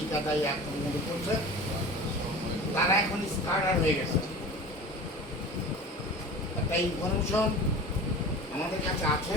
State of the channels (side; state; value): both; normal; correlation 0.36